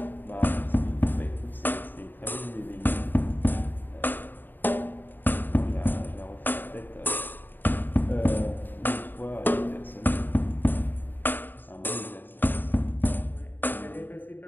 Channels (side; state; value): right; late; 0.092 ms